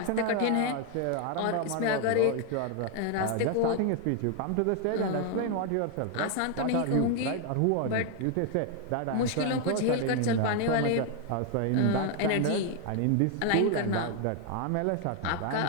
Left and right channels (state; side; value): different; both; correlation 0.00